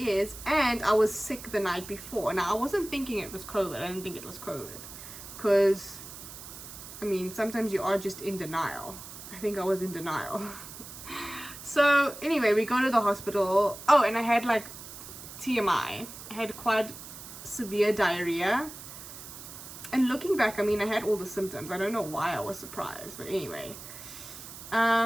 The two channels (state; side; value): noise; right; hiss, 13 dB below the sound